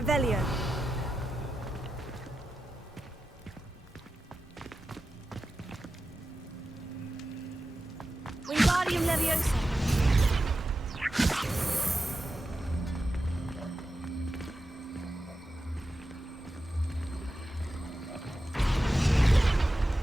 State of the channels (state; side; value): normal; both; correlation 0.91